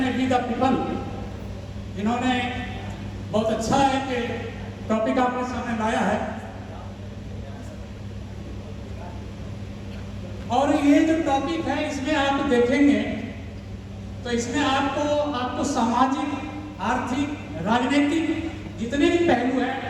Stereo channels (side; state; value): both; identical; correlation 1.00